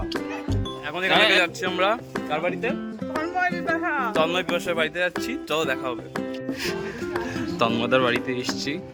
এখন এখান থেকে যাচ্ছি আমরা কার বাড়িতে? তন্ময় পিপাসার বাড়িতে যাচ্ছি। চলো দেখা হবে। তন্ময়দার বাড়িতে এসছি,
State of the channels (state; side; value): identical; both; correlation 1.00